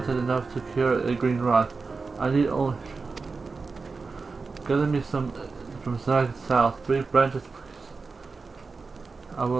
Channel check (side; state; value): left; quieter; 4.3 dB